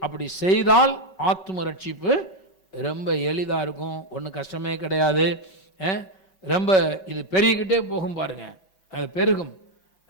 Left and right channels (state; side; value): late; right; 5.3 ms